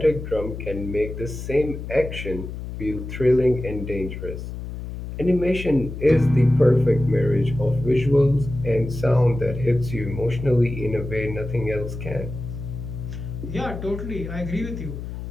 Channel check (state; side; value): noise; left; hum, 8 dB below the sound